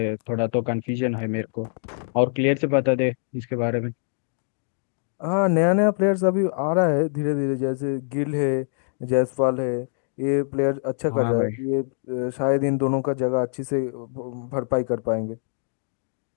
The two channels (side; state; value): right; silent; digital silence